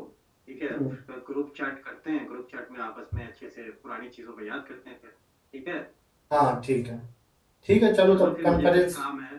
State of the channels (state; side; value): identical; both; correlation 1.00